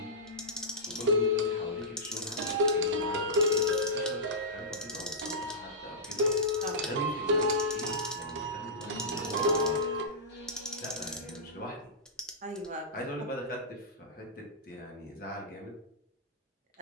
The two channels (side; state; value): both; normal; correlation -0.15